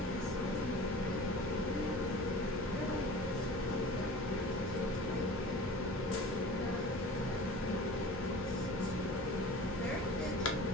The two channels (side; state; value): both; normal; correlation 0.39